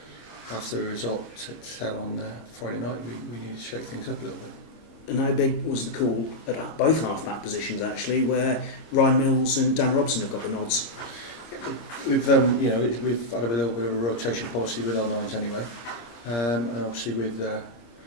after the result to tell on Friday night, we needed to shake things up a little bit. And how big was the call at both half-back positions, actually, where Ryan Mills and Dan Robson have got the nods? We've we've had a little bit of a rotation policy with our nines anyway, and obviously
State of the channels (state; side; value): late; right; 26 ms